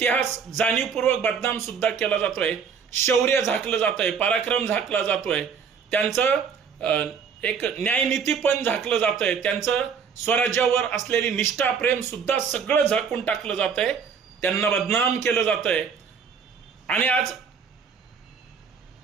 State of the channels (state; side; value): quieter; left; 6.4 dB